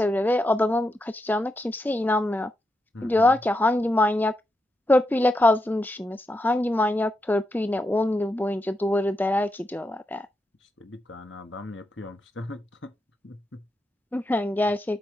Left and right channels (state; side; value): normal; both; correlation 0.85